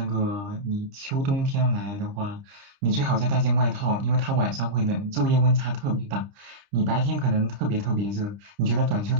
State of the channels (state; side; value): late; left; 30 ms